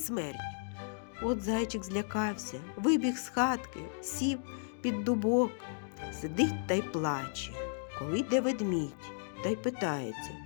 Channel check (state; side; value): silent; right; digital silence